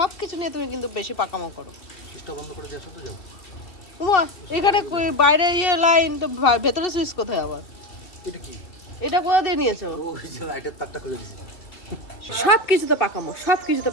কিছু নিয়ে তুমি কিন্তু বেশি পাকামো করো। সুইচটা বন্ধ করে দিয়ে আসো তো, যাও। উমা, এখানে বাইরে লাইন তো, ভেতরে সুইচ কোথায় আবার? এটা কি? এটা কোথা দিয়ে নিয়েছো? ওই যে লাইটের তারটা খুলে দিছি। সব কিছু তো পাকামো, সব কিছু তো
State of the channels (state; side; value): late; right; 2.7 ms